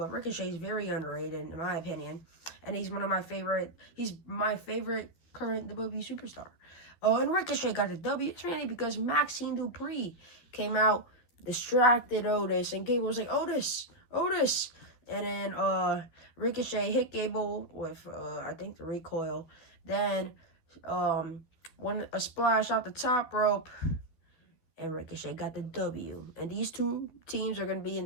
Ricochet is very underrated in my opinion, and he's one of my favorite. He's my favorite current WWE superstar. Oh, and Ricochet got the W. It's mainly because Maxine Dupree came out, distracted Otis, and Gable was like, "Otis, Otis," and then Ricochet hit Gable with I think the recoil. Then a splash off the top rope. And Ricochet got the W. And these two teams are going to be in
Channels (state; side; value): late; right; 12 ms